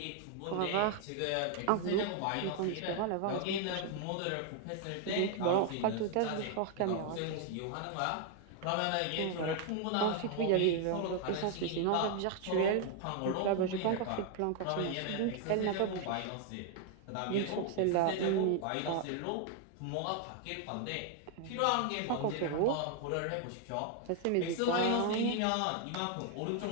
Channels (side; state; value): both; different; correlation 0.00